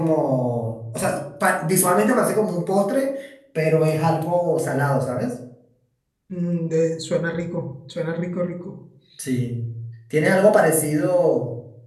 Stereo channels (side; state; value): both; identical; correlation 1.00